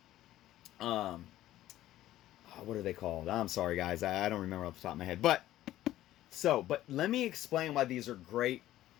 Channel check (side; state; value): right; quieter; 14.1 dB